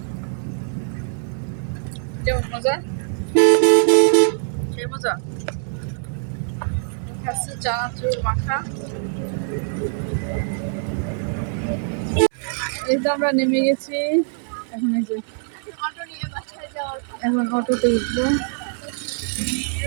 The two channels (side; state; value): left; silent; 63 dB below the other